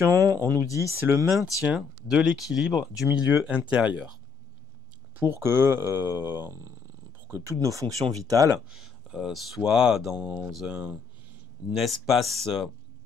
on nous dit c'est le maintien de l'équilibre du milieu intérieur pour que toutes nos fonctions vitales soient dans un espace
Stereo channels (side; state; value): right; quieter; 5.7 dB